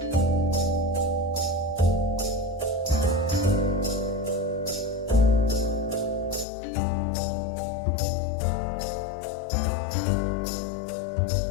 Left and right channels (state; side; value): drops out; right; at 6.5 s